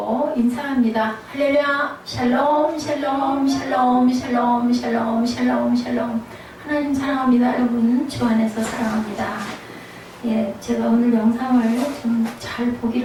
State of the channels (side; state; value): both; identical; correlation 1.00